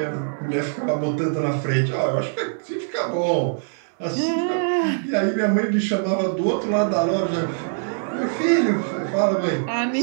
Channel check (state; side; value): silent; left; digital silence